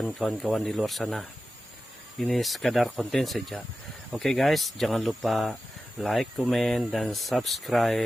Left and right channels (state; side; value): normal; both; correlation 0.93